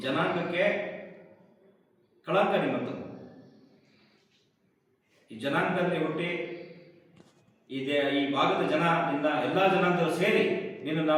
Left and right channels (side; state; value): both; identical; correlation 1.00